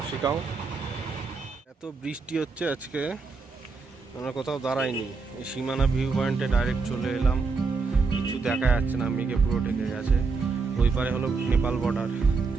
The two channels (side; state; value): left; quieter; 4.4 dB